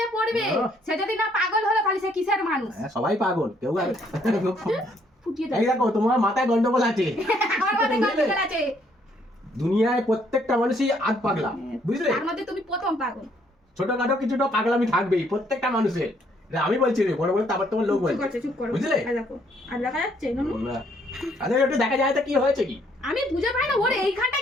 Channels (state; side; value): normal; both; correlation 0.67